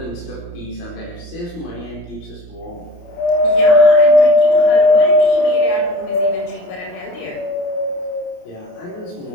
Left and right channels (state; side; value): late; right; 28 ms